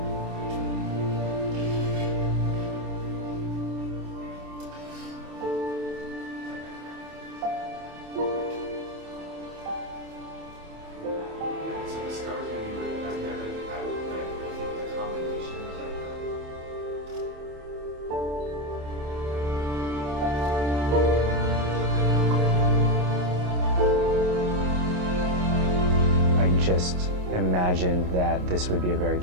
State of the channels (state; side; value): late; left; 27 ms